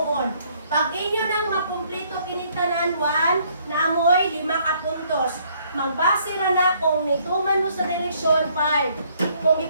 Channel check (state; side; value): inverted; both; correlation -0.66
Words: Pag inyo nang makumpleto kinitanan 1, naamoy 5 ka puntos. Magbase ra na kung nituman mo sa direksyon 5. Kung